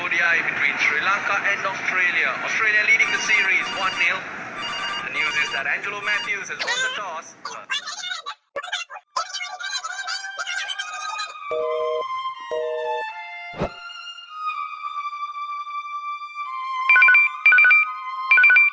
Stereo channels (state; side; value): identical; both; correlation 1.00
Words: ODI between Sri Lanka and Australia. Australia leading the series 1-0. The news is that Angelo Matthews has won the toss.